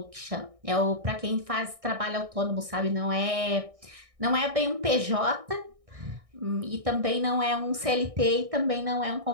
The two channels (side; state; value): left; late; 1.6 ms